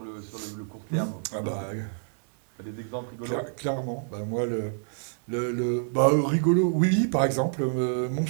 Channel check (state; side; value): silent; left; digital silence